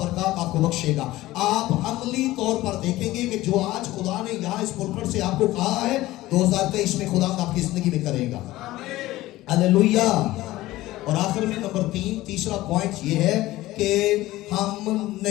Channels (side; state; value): right; quieter; 17.1 dB